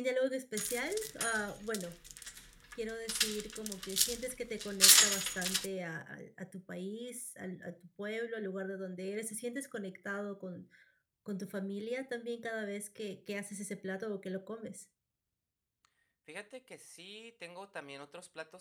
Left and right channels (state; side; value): identical; both; correlation 1.00